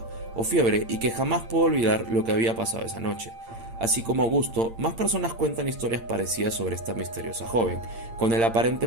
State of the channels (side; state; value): left; late; 8.8 ms